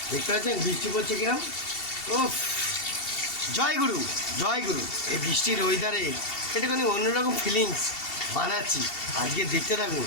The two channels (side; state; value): right; late; 2.7 ms